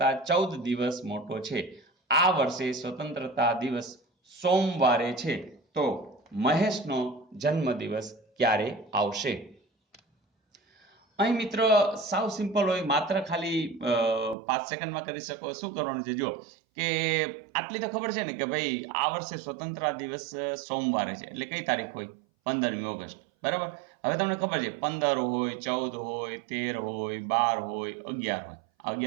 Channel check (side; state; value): left; drops out; at 14.4 s